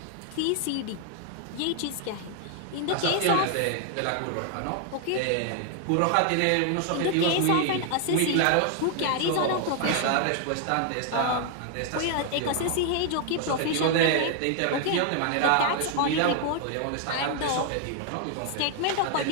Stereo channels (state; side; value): different; both; correlation 0.00